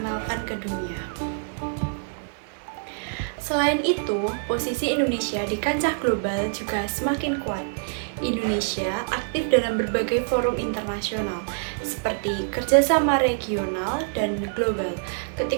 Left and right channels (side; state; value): left; silent; digital silence